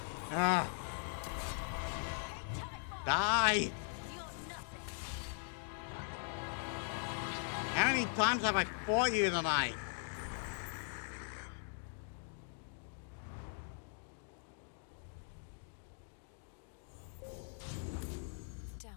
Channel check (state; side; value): silent; right; digital silence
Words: Ah. Die! How many times have I fought you tonight?